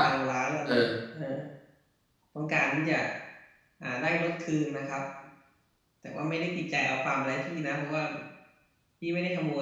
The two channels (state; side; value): identical; both; correlation 1.00